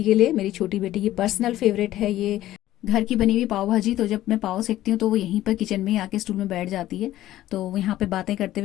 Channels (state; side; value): quieter; right; 14.3 dB